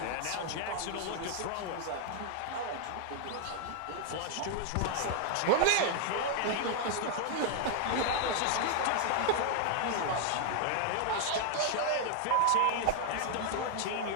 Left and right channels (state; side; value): different; both; correlation 0.00